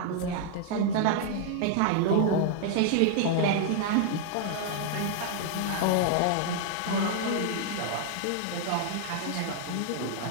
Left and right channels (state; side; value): different; both; correlation 0.00